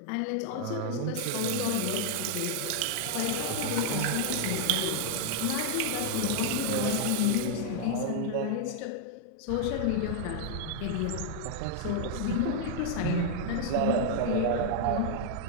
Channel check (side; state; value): both; different; correlation 0.00